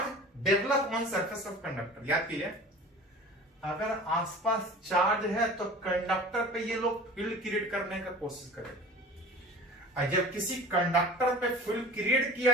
develop on surface of conductor. याद कीजिए, अगर आसपास चार्ज है तो कंडक्टर पे ये लोग फील्ड क्रिएट करने का कोशिश करेंगे, और जब किसी कंडक्टर पे फील्ड क्रिएट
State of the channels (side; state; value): both; normal; correlation 0.40